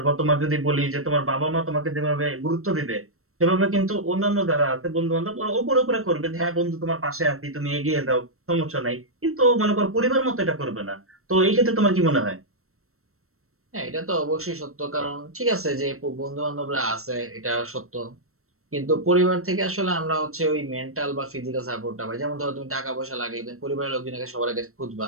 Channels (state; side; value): late; left; 0.63 ms